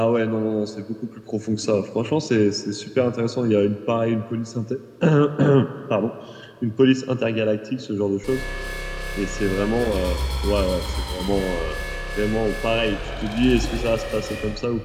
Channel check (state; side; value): identical; both; correlation 1.00